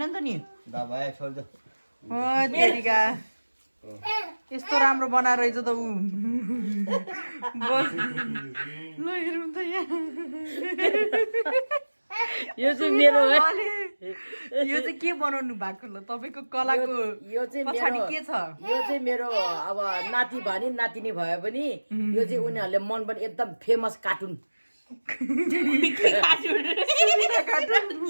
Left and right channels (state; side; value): inverted; both; correlation -1.00